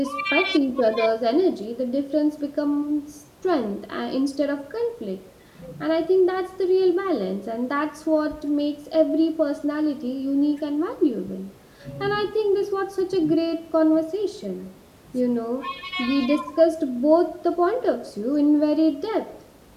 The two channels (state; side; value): identical; both; correlation 1.00